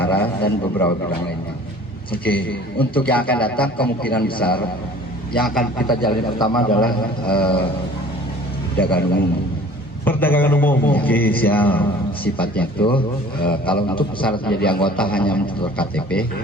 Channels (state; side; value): normal; both; correlation 0.48